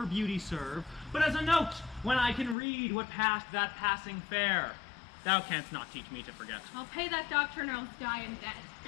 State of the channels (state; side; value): drops out; right; at 2.6 s